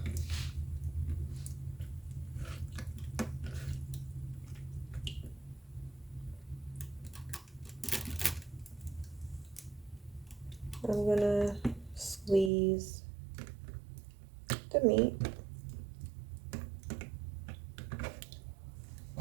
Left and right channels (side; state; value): left; drops out; at 12.5 s